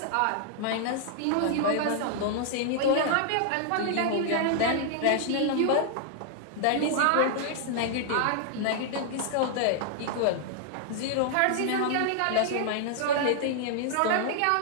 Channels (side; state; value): both; different; correlation 0.00